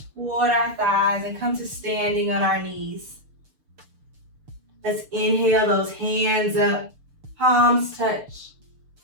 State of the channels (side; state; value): left; late; 6.8 ms